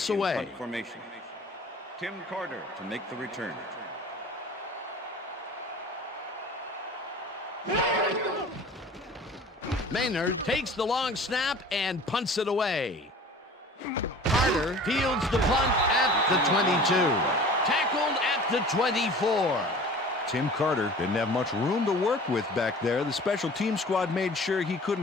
in away. punt formation. Tim Carter to make the return. Maynard takes the long snap and punts it away. Carter fields the punt at the 22. Tackled at the 24. Tim Carter didn't have much room to work with back there. The special team squad made sure he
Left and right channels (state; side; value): normal; both; correlation 0.43